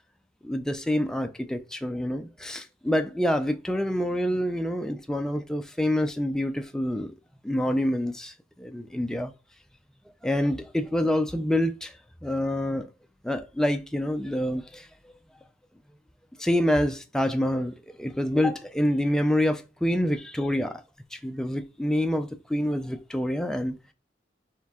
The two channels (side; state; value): both; normal; correlation 0.91